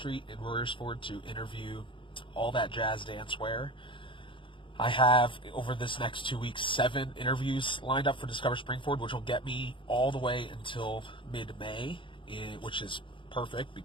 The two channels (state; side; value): late; right; 0.24 ms